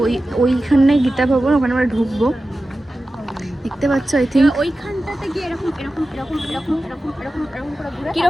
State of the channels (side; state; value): both; normal; correlation 0.94